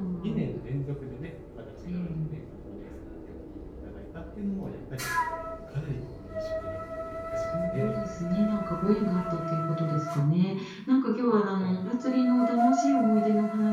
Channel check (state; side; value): identical; both; correlation 1.00